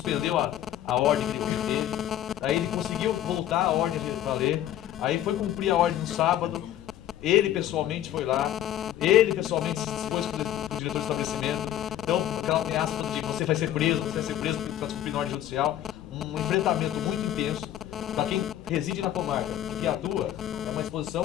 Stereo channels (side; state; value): right; quieter; 12.0 dB